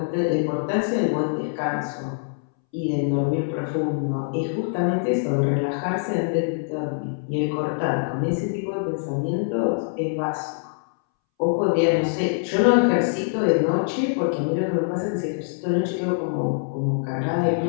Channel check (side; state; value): right; silent; 63 dB below the other